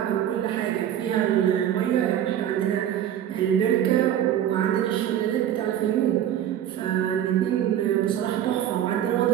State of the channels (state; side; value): quieter; left; 10.7 dB